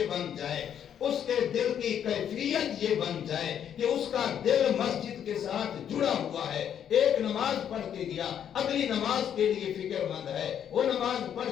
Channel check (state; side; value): quieter; right; 9.1 dB